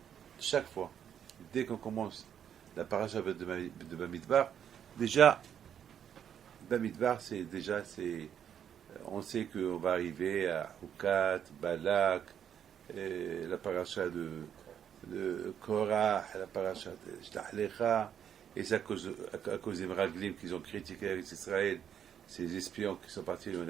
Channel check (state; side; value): quieter; left; 8.9 dB